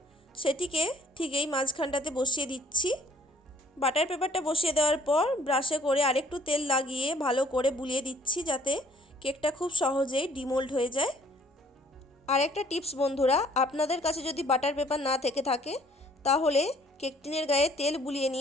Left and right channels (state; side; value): normal; both; correlation 0.60